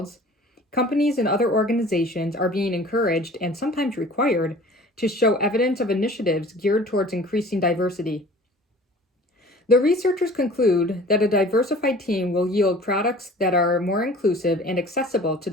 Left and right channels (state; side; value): normal; both; correlation 0.46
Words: companies and other organizations are being encouraged and sometimes required to show evidence of initiatives geared towards increasing diversity. The researchers conclude that a diversified team will yield products that are more inclusive and accessible to